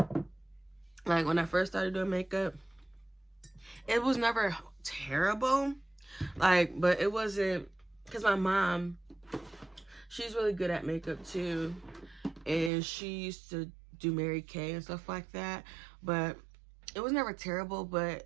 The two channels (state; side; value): drops out; left; at 12.7 s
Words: Like when I first started doing makeup, it was never terrible, like, but it wasn't, because my mom, she's really good at makeup too, and she used to do Mary Kay and stuff like that, but it was never terrible. But